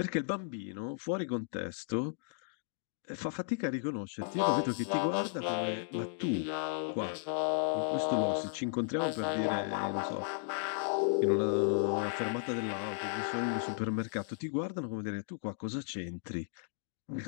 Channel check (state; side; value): silent; right; digital silence